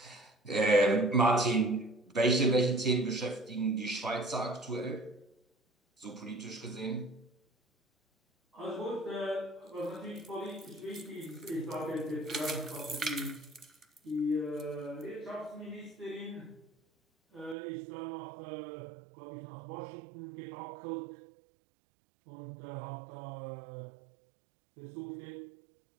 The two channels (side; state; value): left; drops out; at 17.6 s